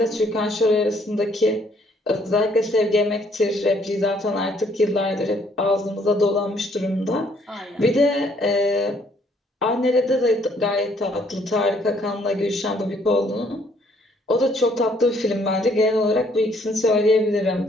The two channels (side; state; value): both; normal; correlation 0.65